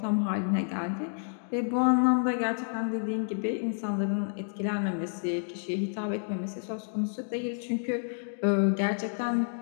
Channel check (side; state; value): right; silent; digital silence